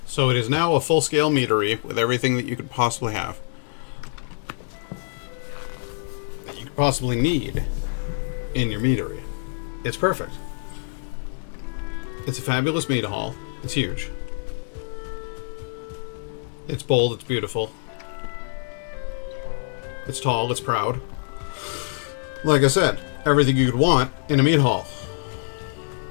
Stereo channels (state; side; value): silent; right; digital silence